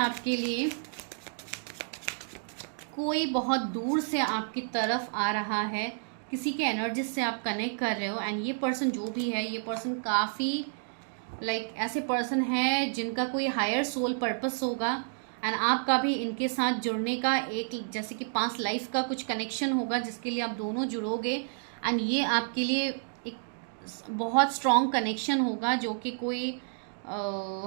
लिए कोई बहुत दूर से आपकी तरफ आ रहा है, किसी के एनर्जी से आप कनेक्ट कर रहे हो। एंड ये पर्सन जो भी है, ये पर्सन काफ़ी लाइक ऐसे पर्सन है जिनका कोई हायर सोल पर्पस होगा, एंड आपका भी इनके साथ जुड़ने का एक जैसे कि पास्ट लाइफ का कुछ कनेक्शन होगा जिसके लिए आप दोनों जुड़ोगे। एंड ये आपके लिए एक बहुत स्ट्रॉन्ग कनेक्शन होगा जो कि कोई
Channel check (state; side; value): silent; left; digital silence